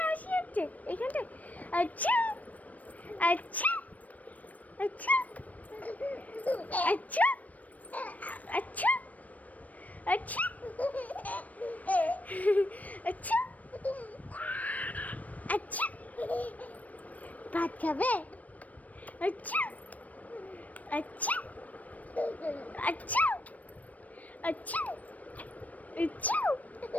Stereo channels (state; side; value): late; right; 0.072 ms